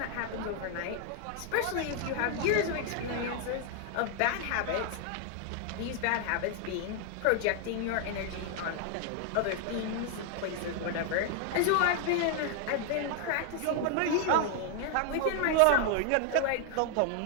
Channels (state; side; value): different; both; correlation 0.00